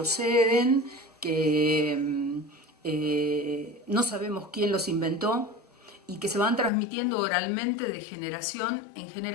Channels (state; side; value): drops out; right; at 6.7 s